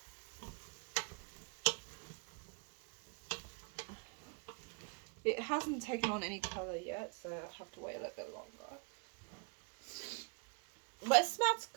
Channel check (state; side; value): quieter; left; 36.3 dB